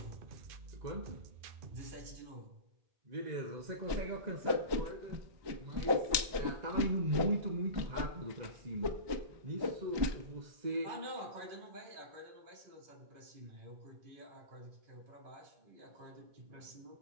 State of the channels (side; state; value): left; late; 1.2 ms